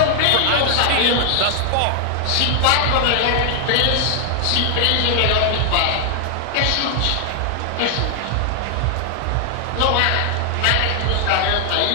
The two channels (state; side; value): different; both; correlation 0.00